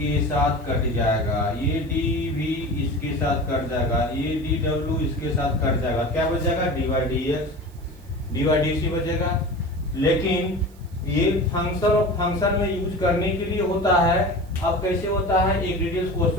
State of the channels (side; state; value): right; noise; hiss, 28 dB below the sound